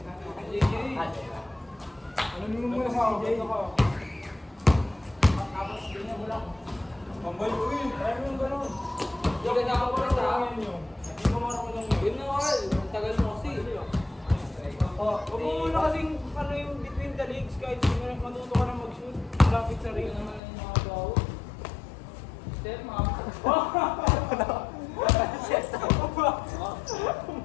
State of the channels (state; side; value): drops out; right; at 20.4 s